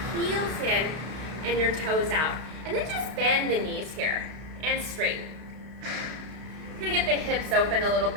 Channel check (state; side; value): late; left; 32 ms